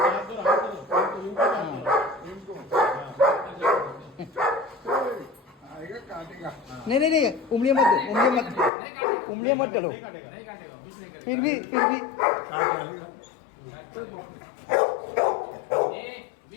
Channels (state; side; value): drops out; right; at 8.7 s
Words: हाथ दो इनको इनको आएगा काटेगा। नहीं नहीं नहीं, उंगलियां मत दो, उंगलियां मत डालो। नहीं काटेगा कुछ नहीं करेगा। फिर भी काट डालेगा।